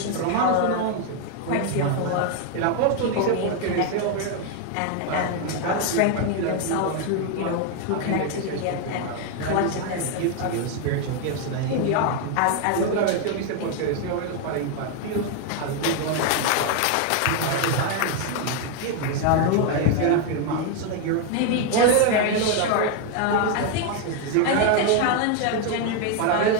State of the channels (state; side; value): different; both; correlation 0.01